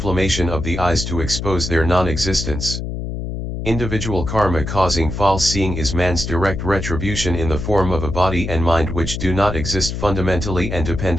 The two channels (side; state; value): left; noise; hum, 5 dB below the sound